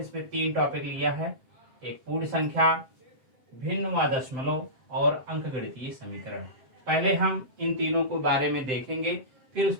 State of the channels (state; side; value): late; left; 7.7 ms